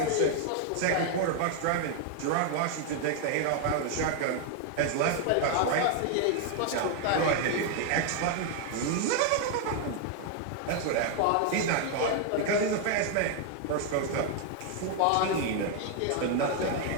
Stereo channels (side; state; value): both; different; correlation 0.00